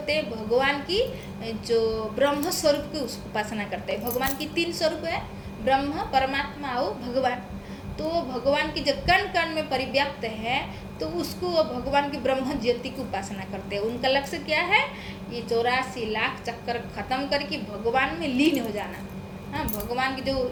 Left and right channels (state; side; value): identical; both; correlation 1.00